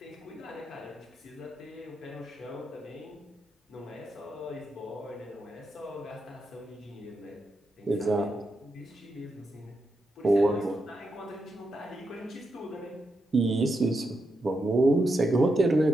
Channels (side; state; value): both; normal; correlation 0.85